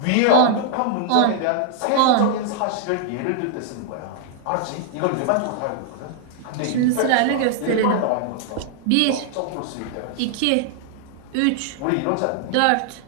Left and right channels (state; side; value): different; both; correlation -0.01